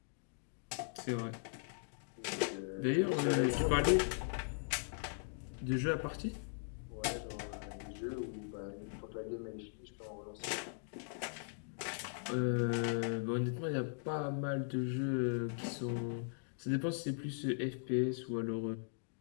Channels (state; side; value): silent; right; digital silence